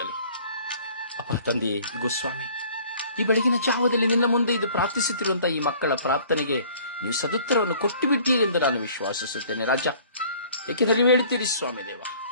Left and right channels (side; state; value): both; inverted; correlation -0.52